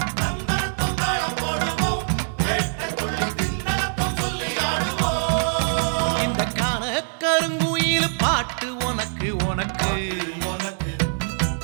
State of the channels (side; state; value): left; silent; digital silence